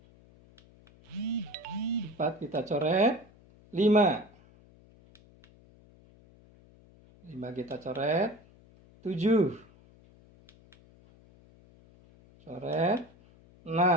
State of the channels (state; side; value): noise; left; hum, 27 dB below the sound